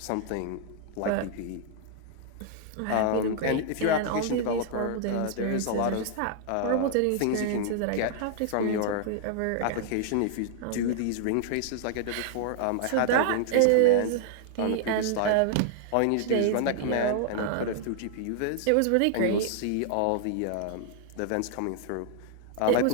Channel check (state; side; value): different; both; correlation -0.01